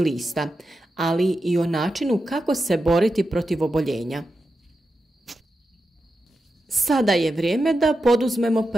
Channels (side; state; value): both; normal; correlation 0.89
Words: ali i o načinu kako se boriti protiv oboljenja. Sada je vrijeme da poduzmemo